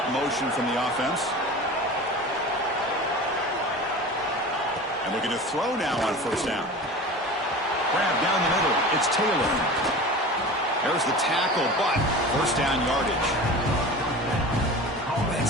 motion from the offense. And looking to throw now on first down. Grab down the middle. It's Taylor. There's the tackle, but first down yardage.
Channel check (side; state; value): both; normal; correlation 0.35